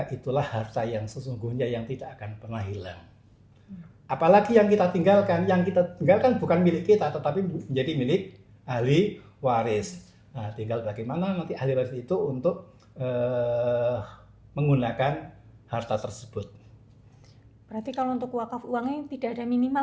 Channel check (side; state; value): both; identical; correlation 1.00